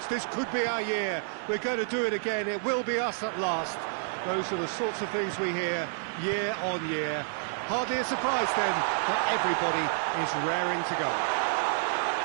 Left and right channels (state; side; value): silent; left; digital silence